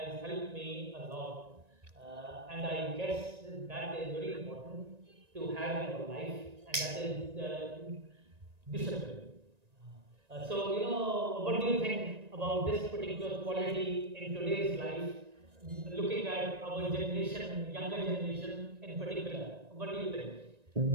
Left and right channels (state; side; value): late; left; 1.9 ms